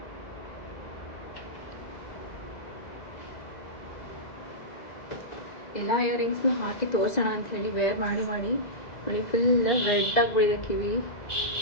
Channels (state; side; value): late; right; 2.0 ms